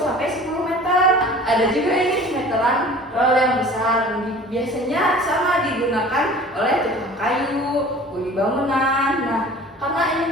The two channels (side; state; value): both; normal; correlation 0.44